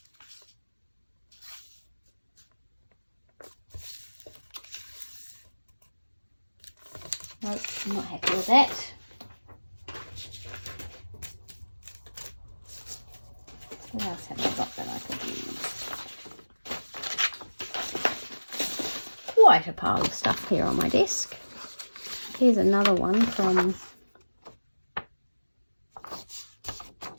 Nope, I'm not happy with that. What else have I got that I could use? Quite a pile of stuff here on my desk. Here's another one from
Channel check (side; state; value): both; inverted; correlation -1.00